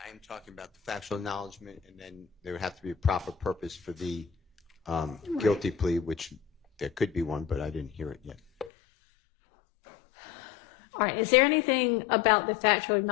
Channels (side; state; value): right; drops out; at 8.7 s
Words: am talking about the factual acknowledgement, and then there would have to be a proper purpose for the guilty plea, which there could be one, but I didn't hear it yet. All right. Is there anything about the factual